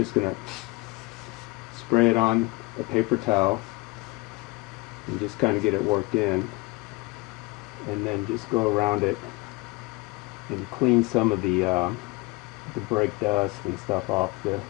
going to spray it on a paper towel and just kind of get it worked in, and then just go around it and clean some of the brake dust and stuff off the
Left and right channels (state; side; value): quieter; right; 23.9 dB